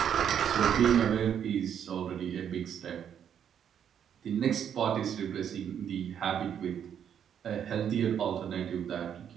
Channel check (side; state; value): left; quieter; 8.8 dB